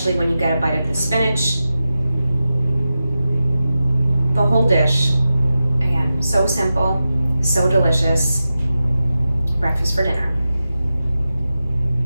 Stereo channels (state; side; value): inverted; both; correlation -0.93